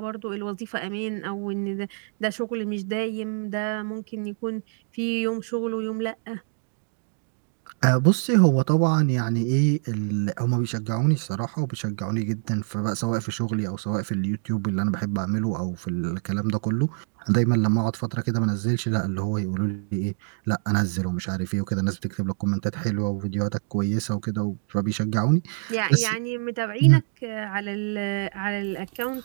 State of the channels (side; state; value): left; silent; digital silence